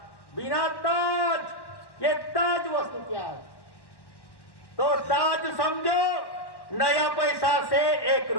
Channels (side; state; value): right; late; 1.1 ms